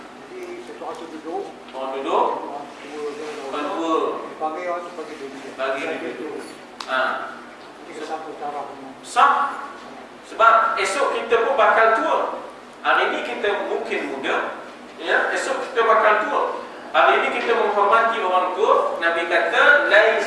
Jadi satu tu duduk. Orang duduk. Orang dua. Dipanggil orang tu bagi duduk. Bagi duduk. Jadi satu cara kamu. Sah. Sebab esok kita pun bakal tua. Hari ini kita mungkin muda, ya, esok kita bakal tua. Hari ini kita menghormati orang tua. Nabi kata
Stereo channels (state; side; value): identical; both; correlation 1.00